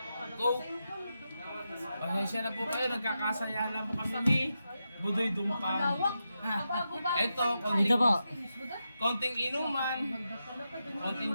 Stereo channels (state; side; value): inverted; both; correlation -0.88